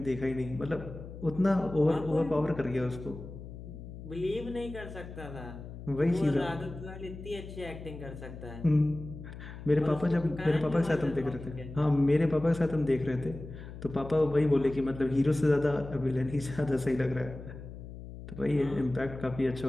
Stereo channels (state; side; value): noise; left; hum, 12 dB below the sound